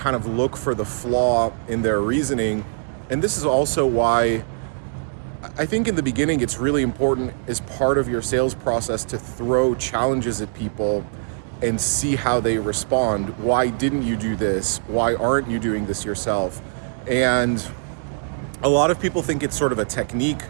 of look for the flaw in their reasoning. And this is also why I think in the beginning it's really important as part of your sales process to throw challenges at people and see how they respond. Why didn't you do this? Why aren't you doing this yourself? And a lot of people think it's sort of a technique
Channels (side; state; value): left; silent; digital silence